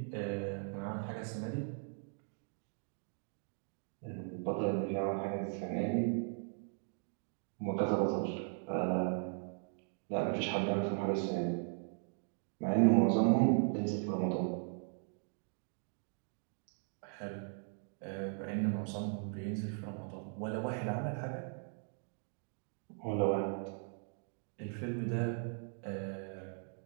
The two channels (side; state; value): left; silent; 52 dB below the other